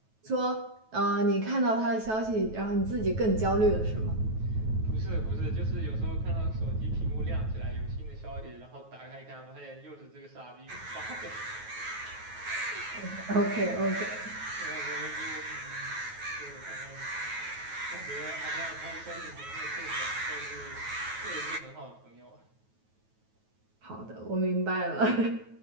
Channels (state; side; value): late; left; 9.3 ms